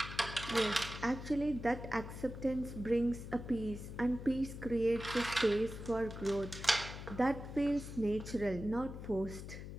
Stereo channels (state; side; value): noise; left; hum, 10 dB below the sound